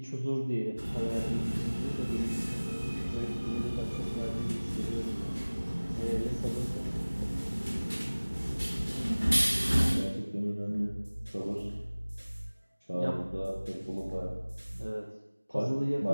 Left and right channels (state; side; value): inverted; both; correlation -1.00